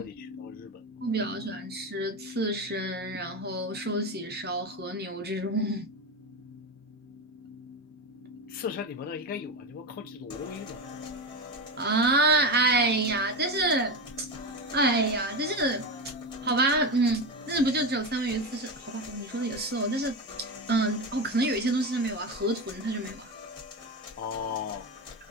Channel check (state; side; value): normal; both; correlation 0.18